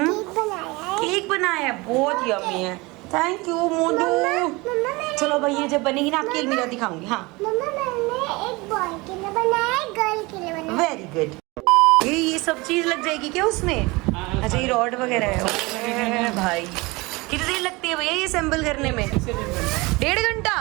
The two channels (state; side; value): quieter; left; 24.0 dB